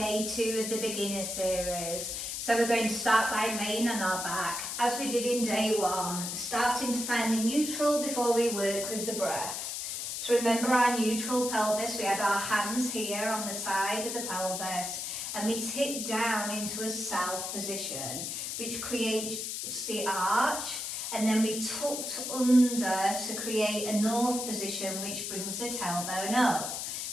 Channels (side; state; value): left; noise; hiss, 4 dB below the sound